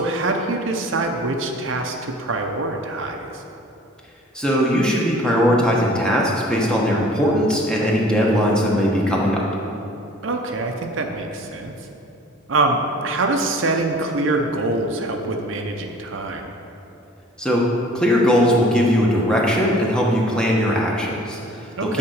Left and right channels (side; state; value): both; normal; correlation 0.49